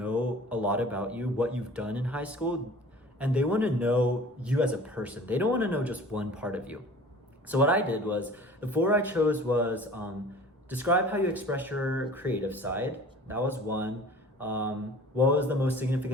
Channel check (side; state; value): both; normal; correlation 0.45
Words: a lot about you, what you've done in high school, and they want to know you as a person. They don't want to know just one part of you. So what I did was, the 4 I chose was describe how you express your creative side. That was one. What was the most